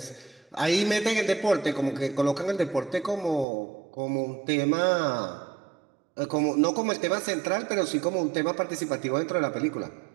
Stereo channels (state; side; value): drops out; left; at 3.5 s